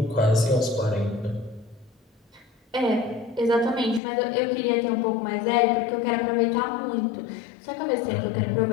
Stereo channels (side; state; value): right; drops out; at 4.0 s